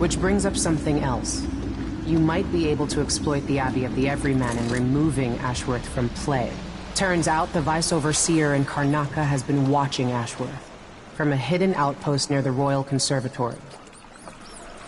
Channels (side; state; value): both; identical; correlation 1.00